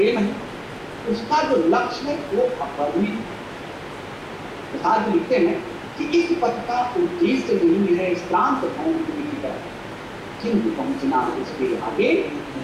है उसका जो लक्ष्य है वो अपरिमित। प्रसाद जी लिखते हैं कि इस पथ का उद्देश्य नहीं है श्रांत भवन की तरह, किंतु पहुंचना उसके आगे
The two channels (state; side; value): identical; both; correlation 1.00